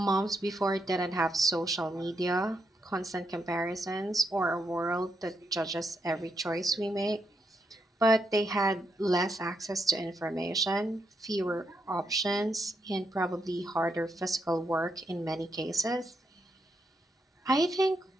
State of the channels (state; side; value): normal; both; correlation 0.80